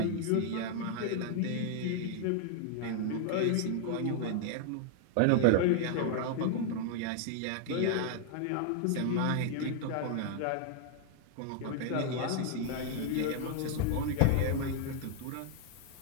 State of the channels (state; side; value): different; both; correlation 0.00